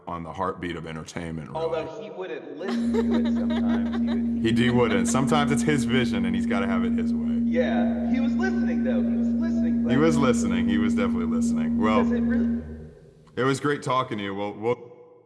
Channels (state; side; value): identical; both; correlation 1.00